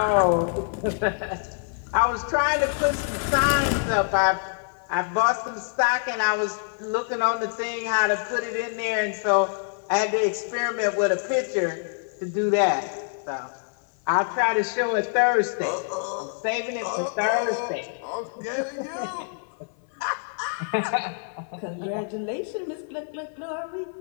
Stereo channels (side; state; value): right; silent; 58 dB below the other